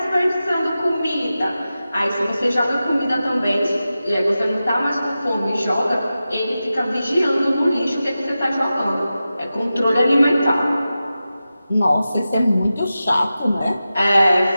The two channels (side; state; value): both; inverted; correlation -0.93